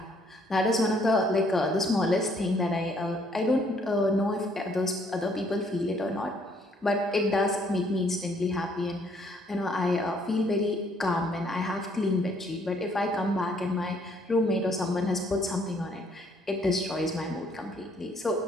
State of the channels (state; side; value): normal; both; correlation 0.65